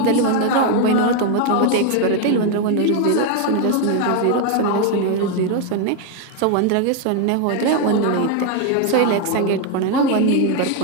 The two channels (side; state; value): both; different; correlation 0.01